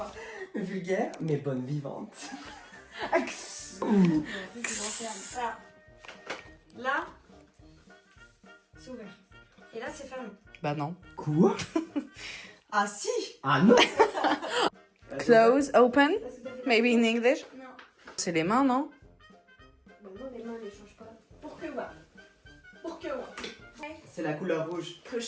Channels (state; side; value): identical; both; correlation 1.00